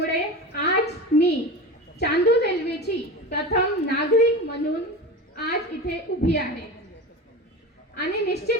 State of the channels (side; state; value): both; normal; correlation 0.28